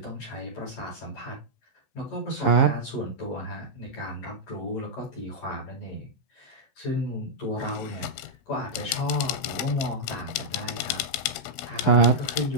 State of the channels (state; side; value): late; right; 16 ms